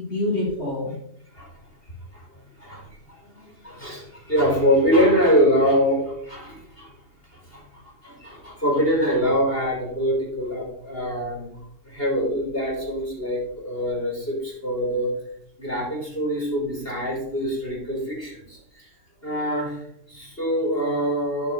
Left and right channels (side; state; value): right; late; 2.8 ms